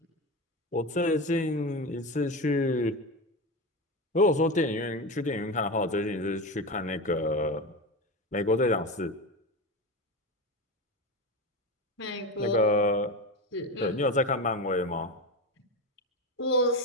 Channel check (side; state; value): both; normal; correlation 0.21